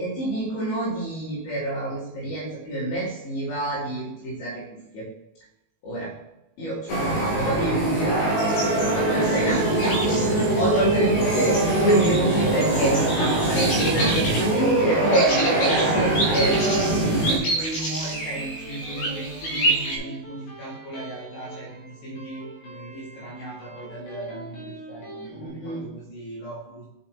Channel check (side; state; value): right; late; 19 ms